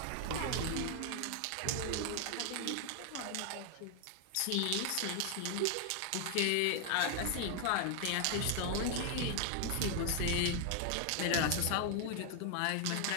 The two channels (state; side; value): different; both; correlation 0.00